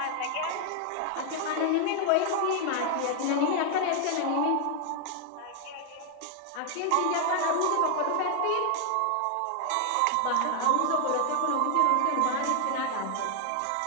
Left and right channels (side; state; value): both; different; correlation 0.00